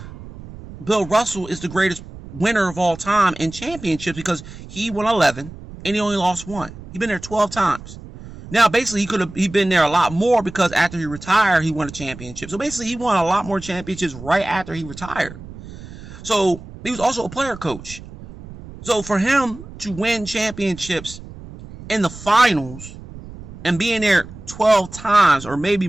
Russell is the greatest winner of all time in championships, because he won 11 and he only lost 1. He been there 12 times. Now, basically, he been there a lot more, because after he retired, he won a championship. So basically, he won a lot more championships right after he retired. So he was also a player coach. So for him to win championships in the finals and being there 12 times, or maybe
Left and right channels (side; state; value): right; noise; rumble, 15 dB below the sound